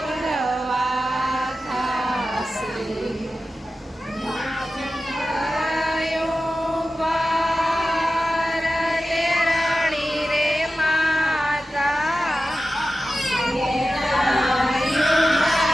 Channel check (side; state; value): both; normal; correlation 0.93